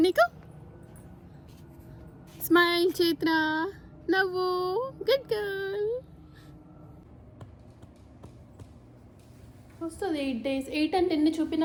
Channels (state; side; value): identical; both; correlation 1.00